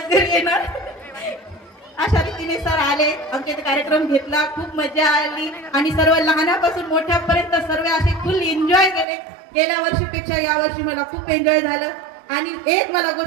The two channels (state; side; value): drops out; left; at 9.1 s